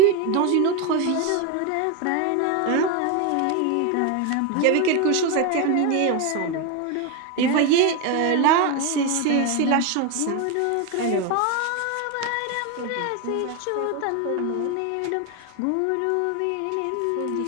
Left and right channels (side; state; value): both; different; correlation 0.02